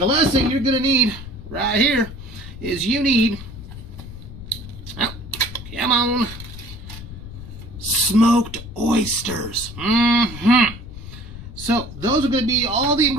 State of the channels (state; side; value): noise; left; rumble, 13 dB below the sound